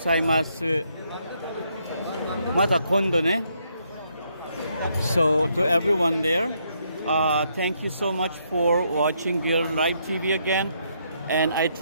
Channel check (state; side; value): inverted; both; correlation -0.74